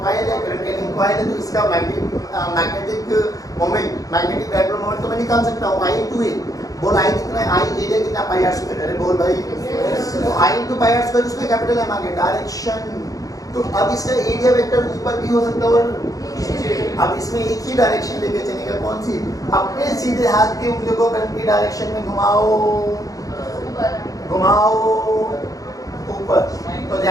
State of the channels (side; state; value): right; late; 0.17 ms